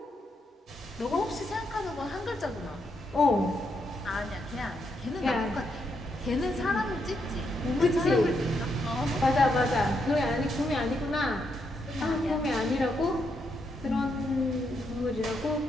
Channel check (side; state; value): both; normal; correlation 0.79